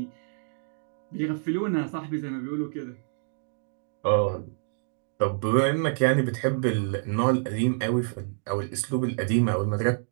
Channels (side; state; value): left; silent; digital silence